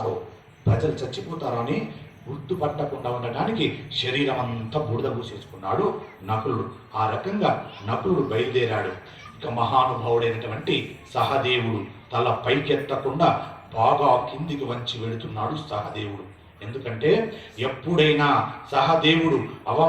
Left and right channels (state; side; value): identical; both; correlation 1.00